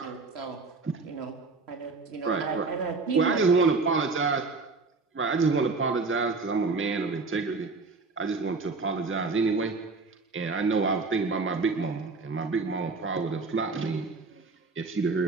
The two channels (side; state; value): left; quieter; 4.0 dB